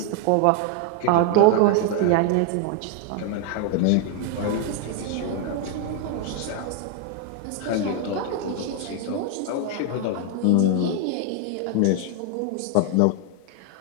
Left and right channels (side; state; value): both; different; correlation 0.00